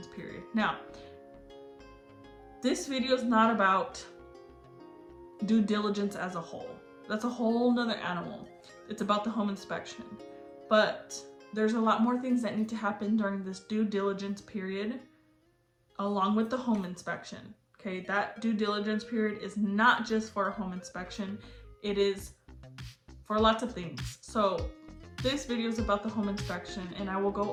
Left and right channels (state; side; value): identical; both; correlation 1.00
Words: period. Now, this video is not about due diligence as a whole. That's a whole nother animal. It's about the home inspection. But there's a lot more things that need to happen during this due diligence period along with the home inspection. Okay, that due diligence period is not just for a home inspection. It is for lots of things. So this video is about the home inspection, and I will